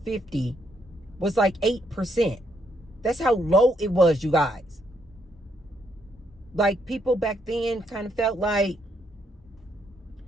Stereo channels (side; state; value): both; normal; correlation 0.74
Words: was like 8%. That's how low it was, you guys. Like, people back then kind of felt like,